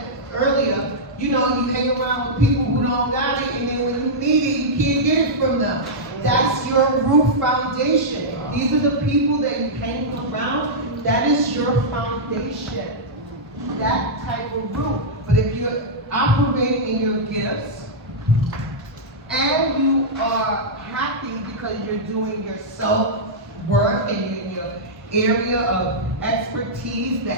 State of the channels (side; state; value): both; normal; correlation -0.09